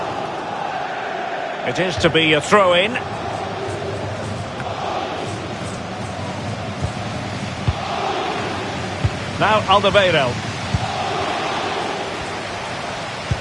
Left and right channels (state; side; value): identical; both; correlation 1.00